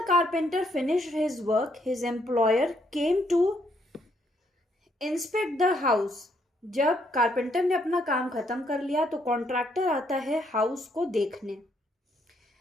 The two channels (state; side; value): normal; both; correlation 0.72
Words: carpenter finished his work, his employer came to inspect the house. जब कारपेंटर ने अपना काम खत्म कर लिया तो कॉन्ट्रैक्टर आता है हाउस को देखने.